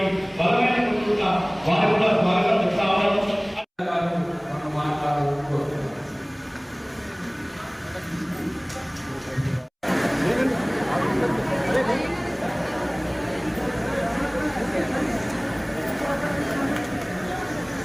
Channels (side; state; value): both; identical; correlation 1.00